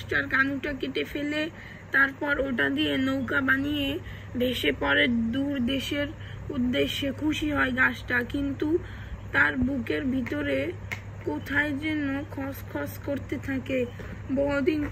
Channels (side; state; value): both; identical; correlation 1.00